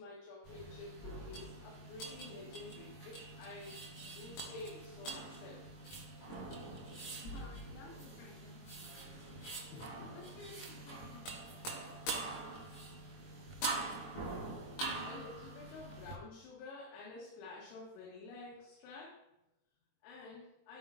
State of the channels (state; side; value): late; right; 22 ms